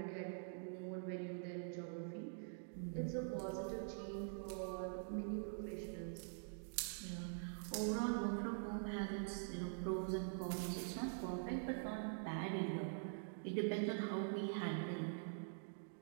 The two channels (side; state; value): left; silent; digital silence